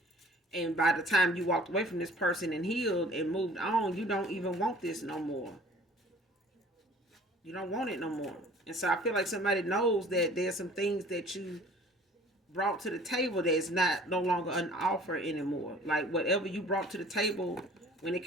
And by the time you walked away from this person and healed and moved on, you don't even want this no more. You don't want it no more. And so I feel like somebody knows that there's some things that you brought to the table that's no longer an offer anymore. Like, whatever you brought to the table when it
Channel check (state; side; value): normal; both; correlation 0.50